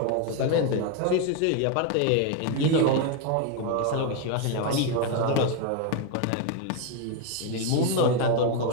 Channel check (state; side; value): different; both; correlation 0.01